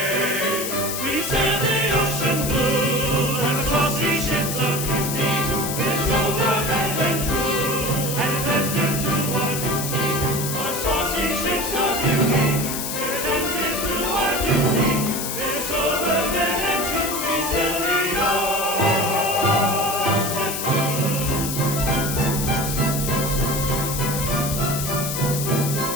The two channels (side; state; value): left; noise; hiss, 4 dB below the sound